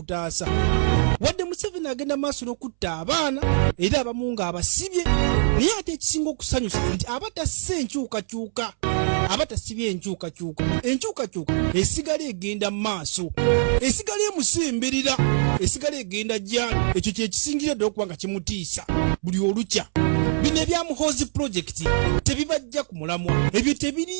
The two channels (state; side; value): silent; left; 63 dB below the other